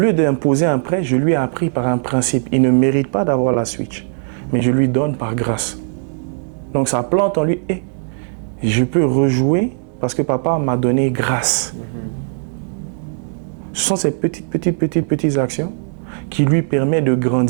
d'imposer un prêt, je lui ai appris par un principe. Il ne mérite pas d'avoir la Switch, mais je lui donne par grâce. Donc ça plante en lui, et je peux rejouer parce que papa m'a donné grâce. Ce sont ces petites actions qui lui permettent de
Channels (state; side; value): silent; left; digital silence